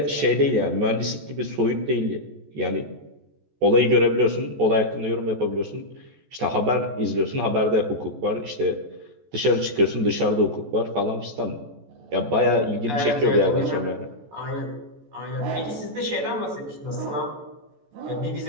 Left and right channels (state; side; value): late; left; 14 ms